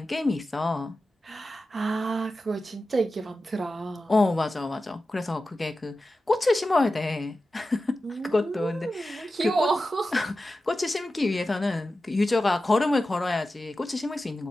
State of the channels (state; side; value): normal; both; correlation 0.93